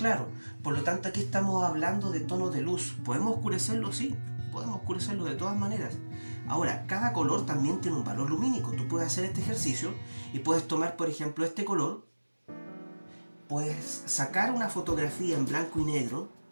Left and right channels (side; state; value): both; inverted; correlation -1.00